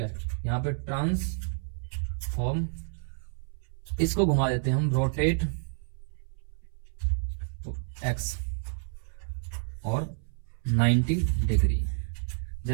यहाँ पे ट्रांसफॉर्म, इसको घुमा देते हैं हम रोटेट एक्स और 90 डिग्री।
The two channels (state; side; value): silent; left; 58 dB below the other